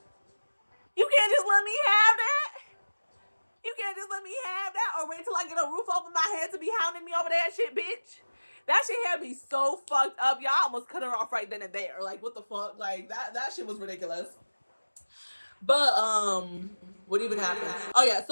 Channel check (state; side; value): inverted; both; correlation -1.00